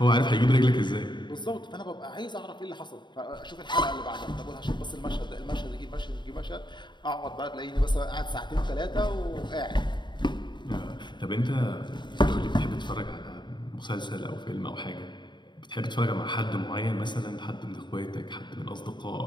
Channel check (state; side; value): late; right; 0.22 ms